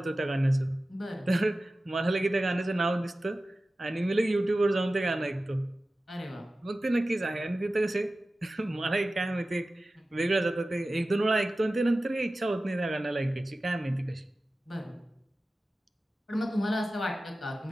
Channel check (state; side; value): normal; both; correlation 0.95